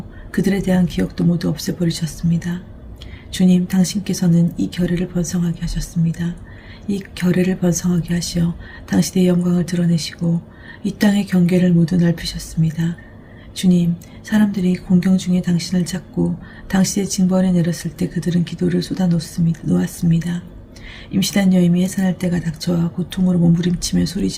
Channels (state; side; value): identical; both; correlation 1.00